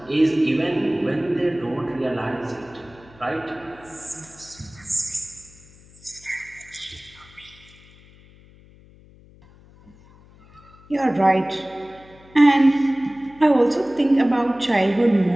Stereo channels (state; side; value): noise; left; hum, 25 dB below the sound